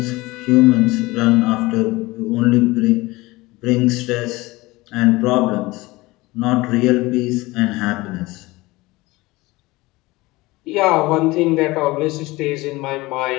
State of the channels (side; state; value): right; quieter; 21.0 dB